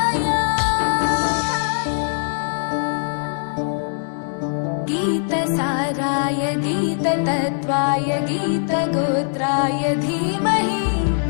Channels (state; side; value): silent; right; 65 dB below the other